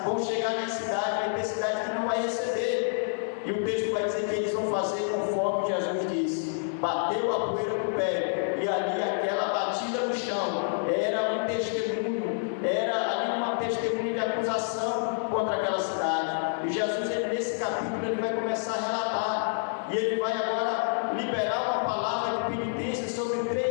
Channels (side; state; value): right; silent; digital silence